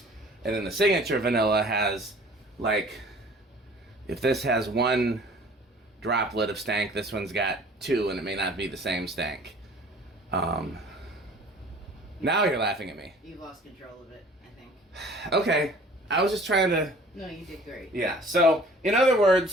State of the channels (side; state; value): both; normal; correlation 0.49